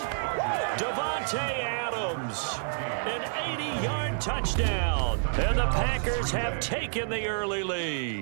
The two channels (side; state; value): left; silent; digital silence